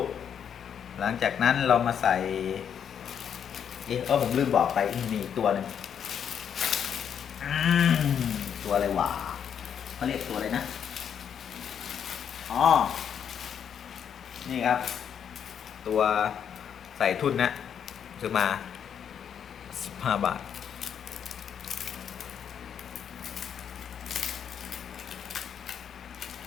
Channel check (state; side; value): quieter; right; 8.2 dB